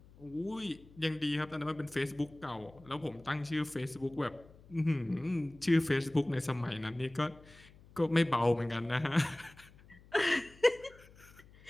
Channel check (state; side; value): noise; left; hum, 23 dB below the sound